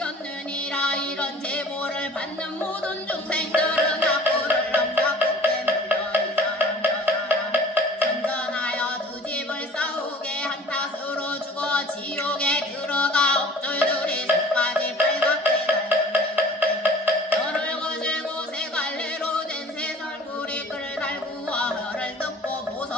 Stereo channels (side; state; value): both; normal; correlation 0.47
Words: 이런 제보를 받는 모든 중생들은 악구를 넘사롭게 물려 이 사람 저 사람 선전하여 두 집을 싸우게 한 탓으로 죽어 지옥에 들어가 옥졸들이 속까지 빨갛게 달렸네. 혀를 거슬고 세 갈래로 된 새설구리 끌 달구어 혀를 뜯고